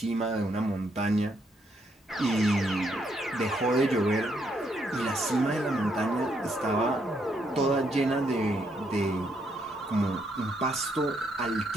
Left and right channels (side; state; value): both; normal; correlation 0.75